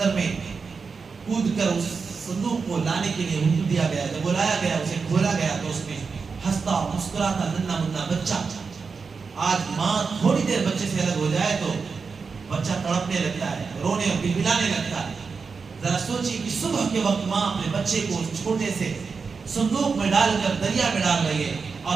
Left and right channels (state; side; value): quieter; left; 5.1 dB